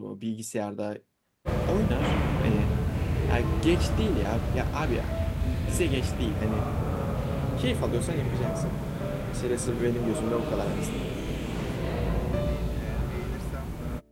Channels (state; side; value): identical; both; correlation 1.00